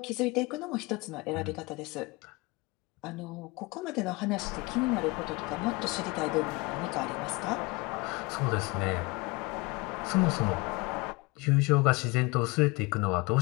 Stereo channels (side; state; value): right; quieter; 25.0 dB